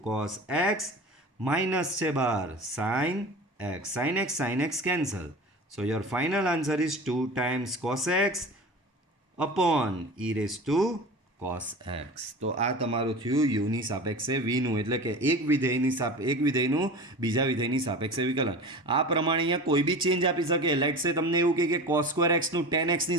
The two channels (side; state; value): both; normal; correlation 0.34